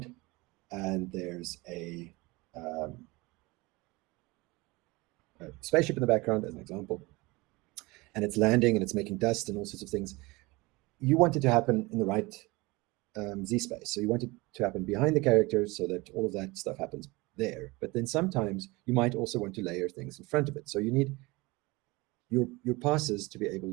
and there's a spaceship in the background, as an example, and it's landing and it's making dust and all sorts of things, you want it to happen in the right Z-space. So you want it to happen behind the characters so that all of that stuff happens there. But then sometimes you might also want to layer things in front of it. So you need your passes to be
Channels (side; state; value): left; quieter; 23.3 dB